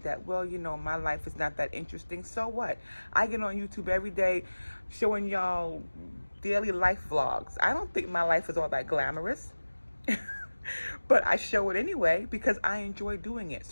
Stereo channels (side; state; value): both; inverted; correlation -1.00